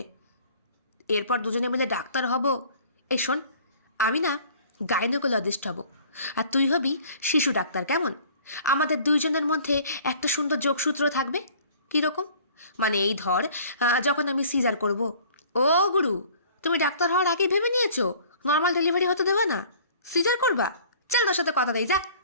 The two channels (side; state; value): both; inverted; correlation -0.50